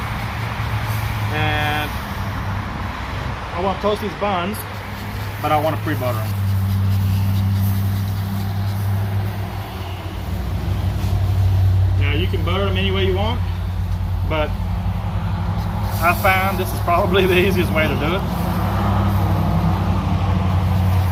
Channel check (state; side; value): identical; both; correlation 1.00